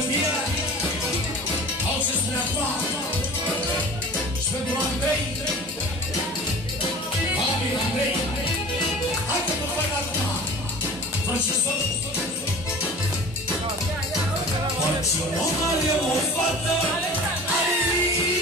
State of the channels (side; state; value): both; normal; correlation 0.40